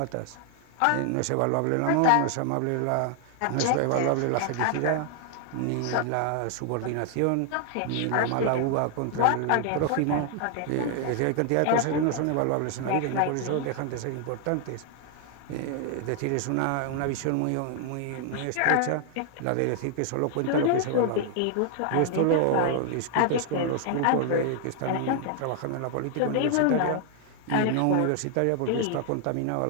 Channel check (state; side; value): different; both; correlation 0.00